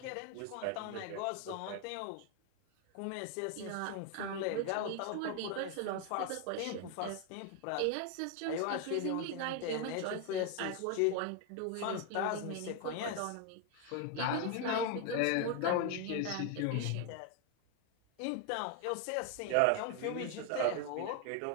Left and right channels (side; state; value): both; different; correlation 0.01